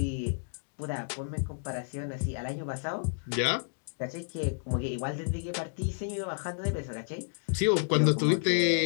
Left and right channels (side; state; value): right; silent; digital silence